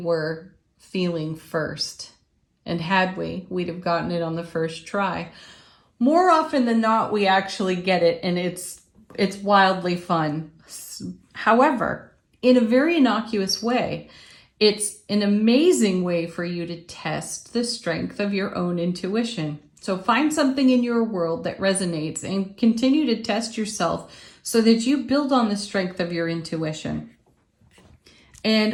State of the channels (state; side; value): identical; both; correlation 1.00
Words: feeling first. And had we'd have gotten it on the first try. More often than not, we actually get it, and it's wildly fun. However, in a very innocuous way, it's an amazing way for you to test the strength of your own intuition. So find something in your world that resonates and continue to test yourself so that you build on the strength of your intuition.